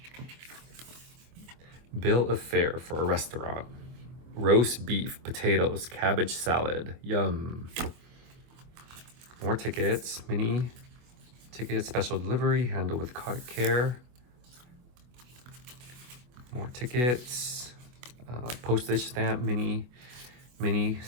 Bill of fare for a restaurant. Roast beef, potatoes, cabbage salad. Yum. More tickets. Mini tickets, special delivery, handle with care. More tickets. Postage stamp, mini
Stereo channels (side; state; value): left; late; 24 ms